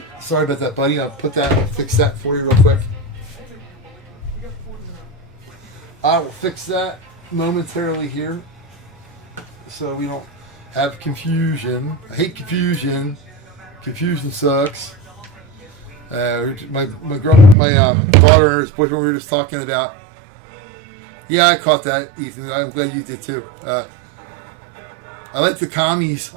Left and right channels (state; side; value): drops out; left; at 17.6 s